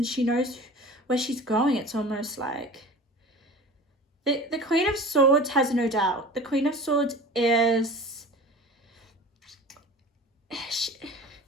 she knows where she's going. It's almost like the Queen of Swords has no doubt. The Queen of Swords is...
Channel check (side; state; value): both; normal; correlation 0.38